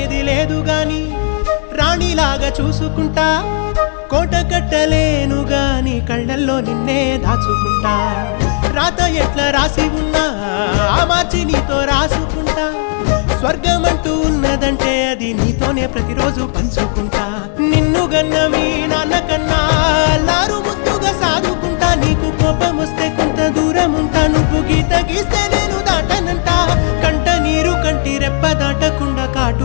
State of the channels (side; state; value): right; silent; 56 dB below the other